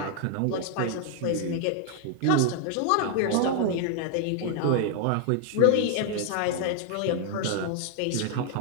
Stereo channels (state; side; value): different; both; correlation 0.00